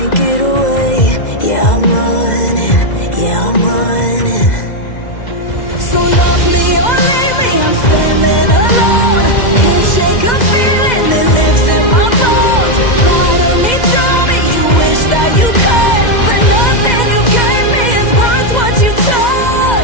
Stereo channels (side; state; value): right; late; 2.0 ms